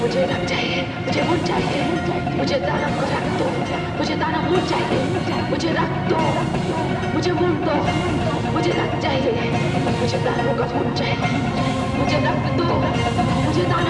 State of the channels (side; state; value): both; identical; correlation 1.00